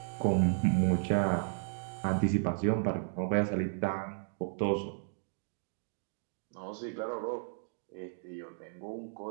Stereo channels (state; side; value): silent; left; digital silence